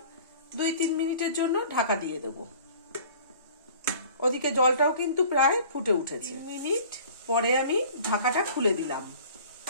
2-3 মিনিটের জন্য ঢাকা দিয়ে দেব। ওদিকে জলটাও কিন্তু প্রায় ফুটে উঠেছে। 3 মিনিট পরে আমি ঢাকাটা খুলে দিলাম।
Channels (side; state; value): both; inverted; correlation -0.47